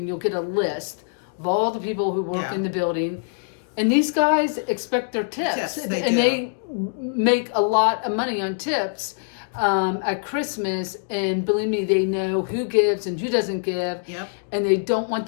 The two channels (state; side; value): silent; right; digital silence